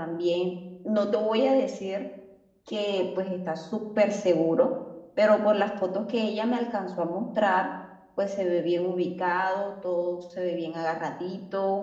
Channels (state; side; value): identical; both; correlation 1.00